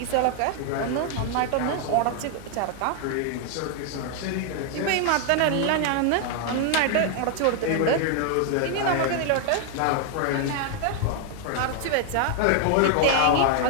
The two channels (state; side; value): different; both; correlation 0.00